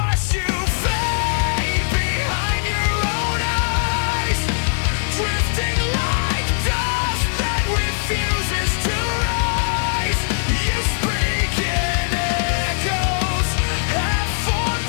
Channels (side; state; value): right; silent; 58 dB below the other